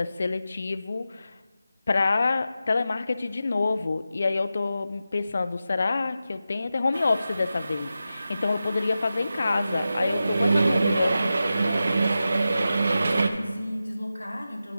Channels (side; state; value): both; inverted; correlation -0.92